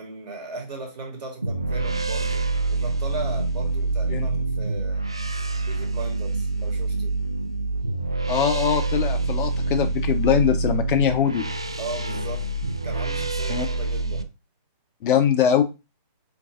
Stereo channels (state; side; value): inverted; both; correlation -0.40